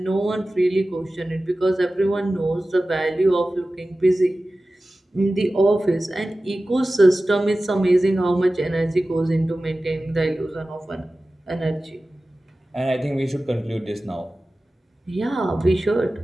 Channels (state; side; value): normal; both; correlation 0.96